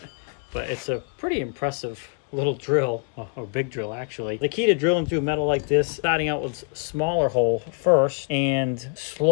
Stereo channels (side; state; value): right; quieter; 39.9 dB